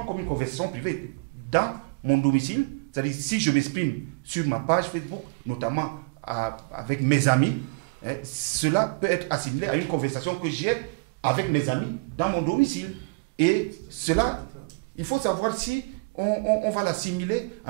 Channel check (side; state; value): left; quieter; 31.1 dB